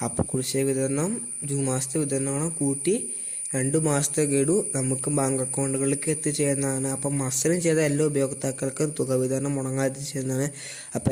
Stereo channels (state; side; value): identical; both; correlation 1.00